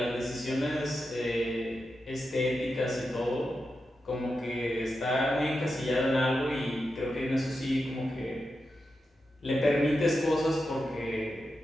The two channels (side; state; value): both; normal; correlation 0.89